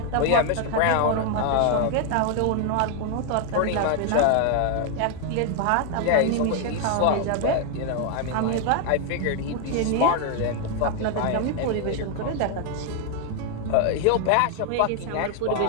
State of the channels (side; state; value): both; different; correlation 0.00